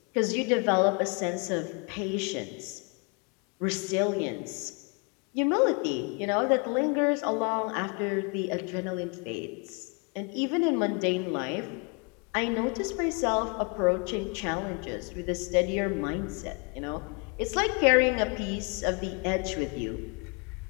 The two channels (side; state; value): right; quieter; 33.4 dB